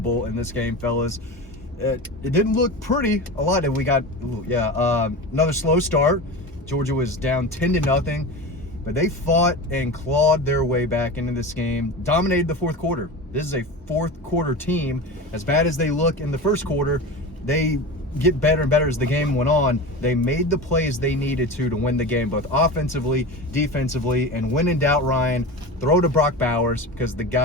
in this game, fellas. It didn't look pretty a lot. We got, another slow start. Georgia was down 10-0, but they fought and clawed their way back into this game, dominated the fourth quarter. This is a fourth quarter team. As bad as they look in the first quarter, they get better and better as the game went on. They made the plays they needed to win the game, both offensively, defensively, and when in doubt, Ryan, throw to Brock Bowers because the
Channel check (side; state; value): both; normal; correlation 0.28